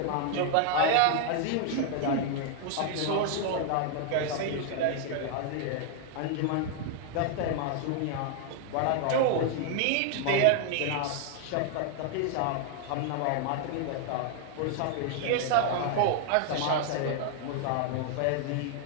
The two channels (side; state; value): both; different; correlation 0.00